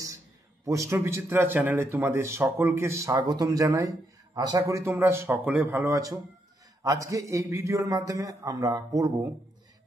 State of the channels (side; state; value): both; normal; correlation 0.78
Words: প্রশ্নবিচিত্রা চ্যানেলে তোমাদের সকলকে স্বাগতম জানাই। আশা করি তোমরা সকলে ভালো আছো। আজকে এই ভিডিওর মাধ্যমে আমরা পড়ব